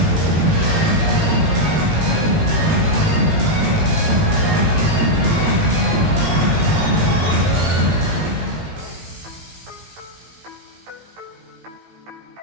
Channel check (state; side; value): late; left; 18 ms